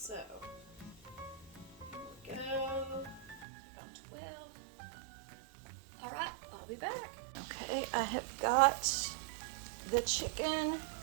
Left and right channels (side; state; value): left; drops out; at 3.5 s